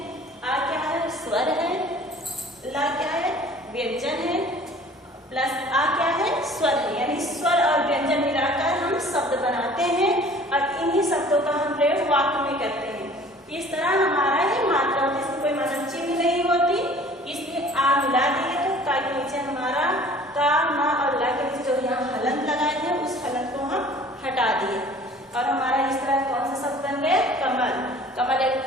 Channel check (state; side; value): normal; both; correlation 0.49